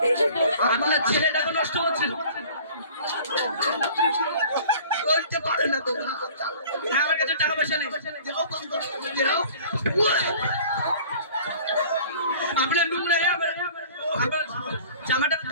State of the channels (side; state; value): both; inverted; correlation -0.47